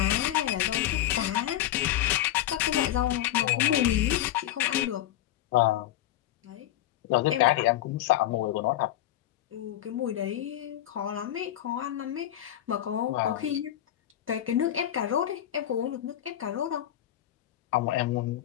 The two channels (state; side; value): quieter; right; 12.8 dB